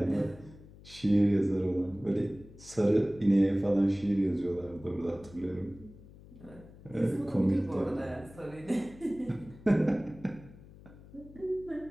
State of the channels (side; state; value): left; noise; hum, 20 dB below the sound